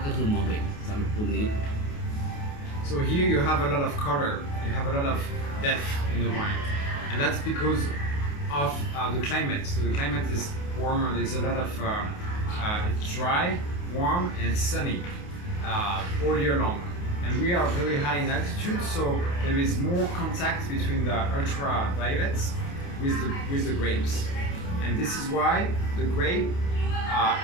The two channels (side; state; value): right; late; 28 ms